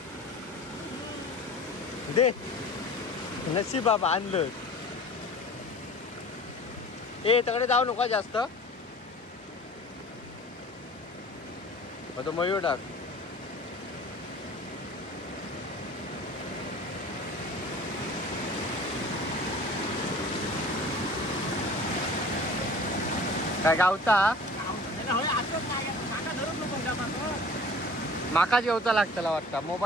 दे. नशीब बाबा आणलं. ए तकडे जाऊ नको जास्त. तो मयूर टाक. काय गावता माका जेवता लागतला वाटतं.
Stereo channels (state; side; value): normal; both; correlation 0.43